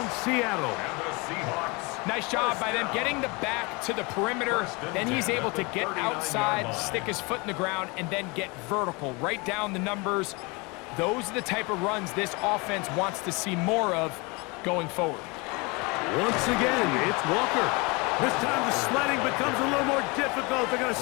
Seattle. Nice job by them getting the back to the perimeter. Then he's able to get outside, stick his foot in the ground, and then get vertical. Right down the numbers. Those are the type of runs this offense wants to see more of going forward. Once again, it's Walker. This time the sledding becomes a little more difficult. They're going to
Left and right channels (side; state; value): right; quieter; 27.6 dB